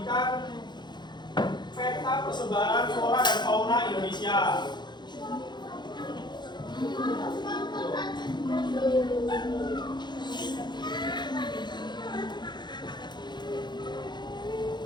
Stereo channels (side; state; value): right; late; 0.21 ms